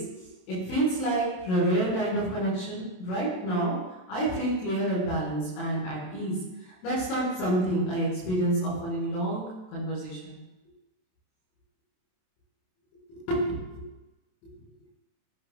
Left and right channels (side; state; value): right; late; 27 ms